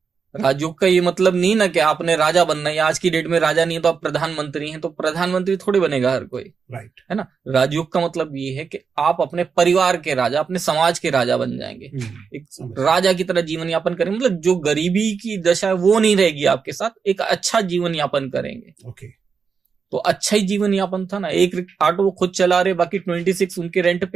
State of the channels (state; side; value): quieter; left; 5.8 dB